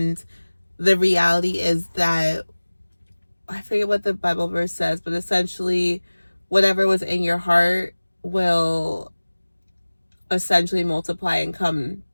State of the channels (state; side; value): inverted; both; correlation -1.00